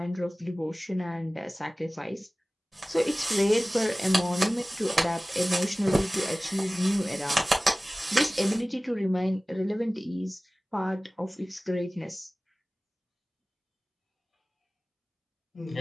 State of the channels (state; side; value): normal; both; correlation 0.98